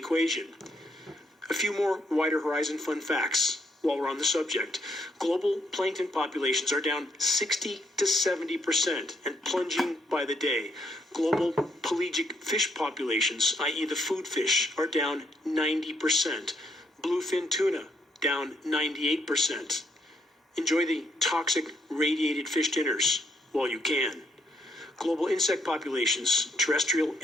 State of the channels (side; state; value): both; normal; correlation 0.73